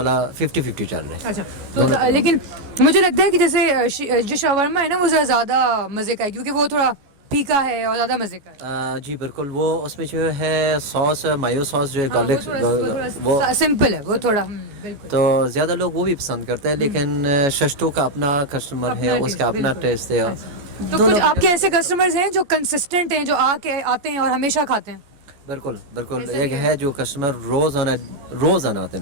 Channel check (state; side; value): late; left; 14 ms